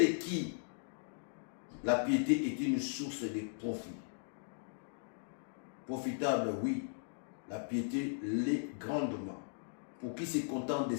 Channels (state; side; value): silent; right; digital silence